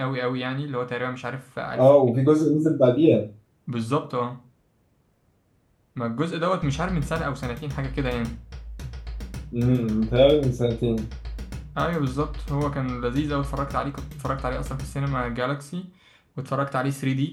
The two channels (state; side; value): identical; both; correlation 1.00